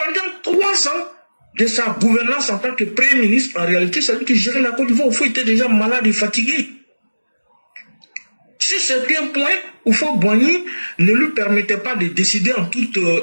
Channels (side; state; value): both; inverted; correlation -1.00